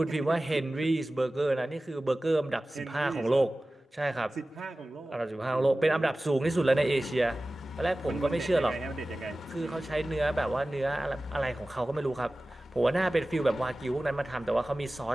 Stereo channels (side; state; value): both; normal; correlation 0.97